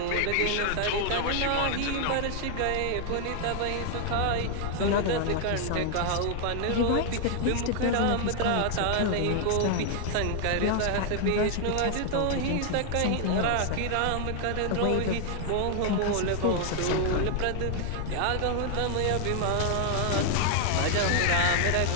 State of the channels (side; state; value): both; different; correlation 0.00